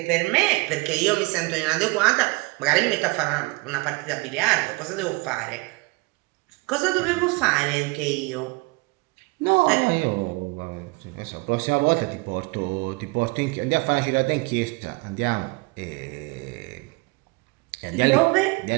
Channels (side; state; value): left; quieter; 26.5 dB